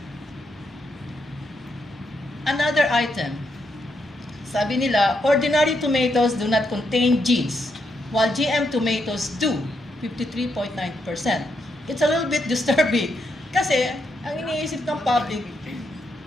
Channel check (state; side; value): normal; both; correlation 0.80